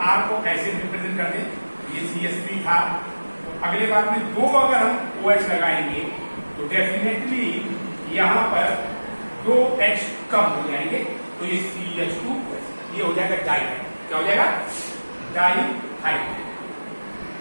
R को ऐसे रिप्रेजेंट कर दें, ये CH3 था, तो अगले बार में दो अगर हम OH लगाएंगे तो डेफिनेटली यहाँ पर दो H कम हो जाएंगे, तो ये CH2 ये हो जाएगा डाइहाइड। क्या हो जाएगा? डाइहाइड।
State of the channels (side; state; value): both; inverted; correlation -1.00